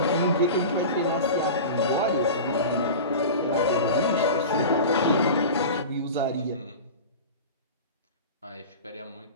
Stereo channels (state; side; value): inverted; both; correlation -0.31